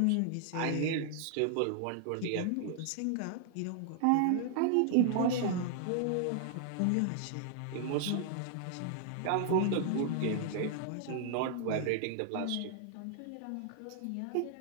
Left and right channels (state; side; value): different; both; correlation 0.00